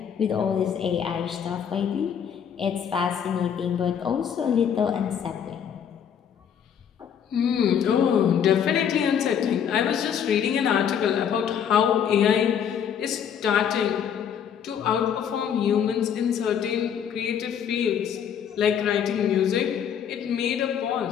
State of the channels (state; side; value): quieter; right; 8.3 dB